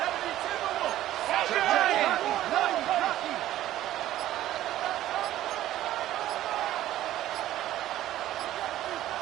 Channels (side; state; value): left; quieter; 13.8 dB